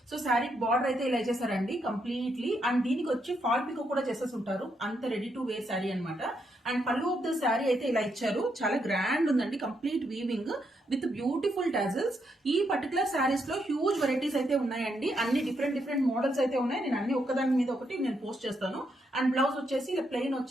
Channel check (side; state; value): both; normal; correlation 0.78